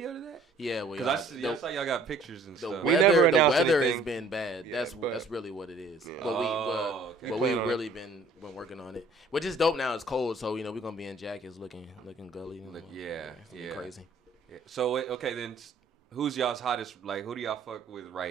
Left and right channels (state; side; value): quieter; left; 3.0 dB